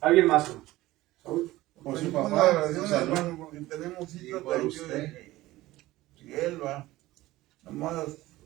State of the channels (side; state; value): left; quieter; 17.4 dB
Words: más, hermano? ¿Saúl? Por su su papá, papá, su oración, salud. hermano, porque tenemos Y citas por de usted. y él va. Nomás